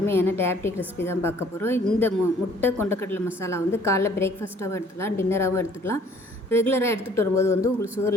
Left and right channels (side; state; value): both; normal; correlation 0.57